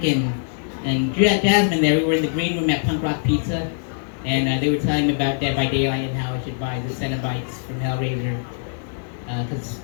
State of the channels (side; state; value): right; silent; 64 dB below the other